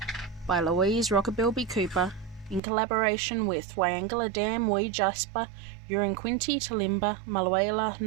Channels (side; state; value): left; drops out; at 2.6 s